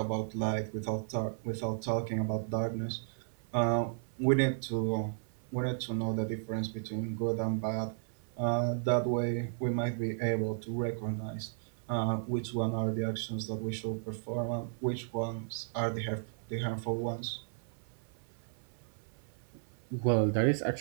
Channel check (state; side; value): silent; left; 55 dB below the other